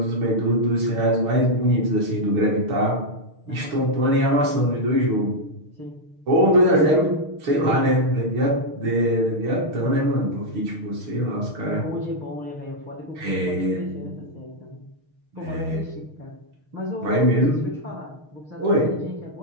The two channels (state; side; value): late; left; 6.5 ms